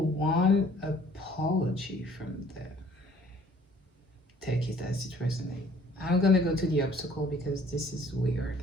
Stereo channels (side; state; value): both; normal; correlation 0.57